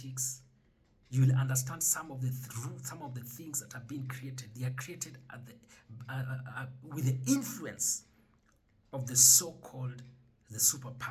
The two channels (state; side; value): identical; both; correlation 1.00